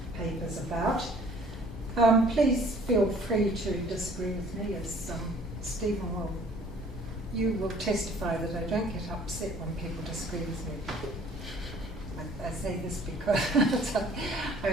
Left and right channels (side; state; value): both; normal; correlation 0.55